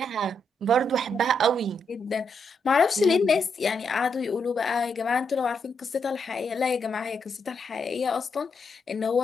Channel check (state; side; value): normal; both; correlation 0.80